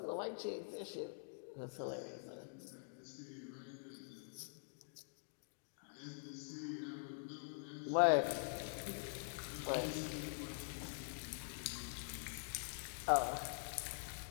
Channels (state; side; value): silent; right; digital silence